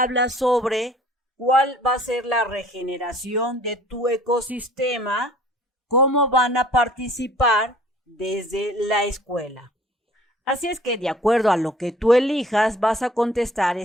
sobre cuál va a ser la regeneración de tu ecosistema, cómo van a participar desde la escuela. Así es que de acuerdo a lo que tú elijas vas a contestar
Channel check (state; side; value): normal; both; correlation 0.52